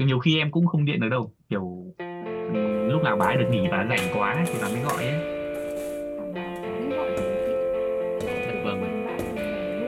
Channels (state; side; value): identical; both; correlation 1.00